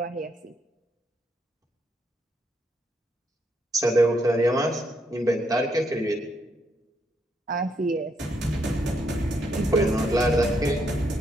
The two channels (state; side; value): normal; both; correlation 0.76